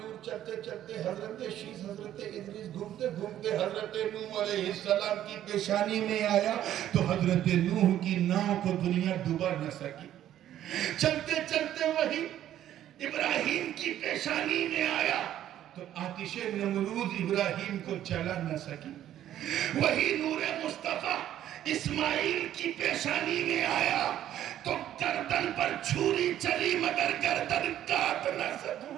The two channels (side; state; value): left; quieter; 11.8 dB